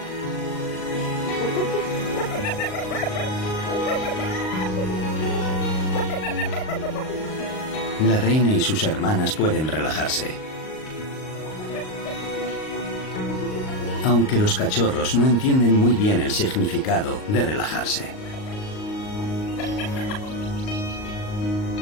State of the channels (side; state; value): right; late; 38 ms